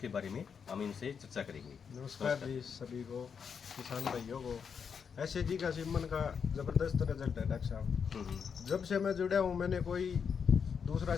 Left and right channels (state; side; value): quieter; right; 6.6 dB